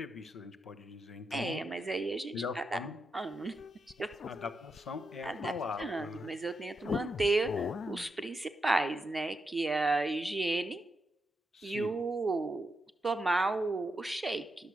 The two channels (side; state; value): both; normal; correlation 0.85